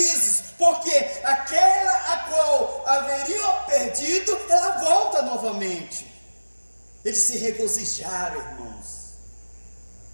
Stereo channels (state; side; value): inverted; both; correlation -1.00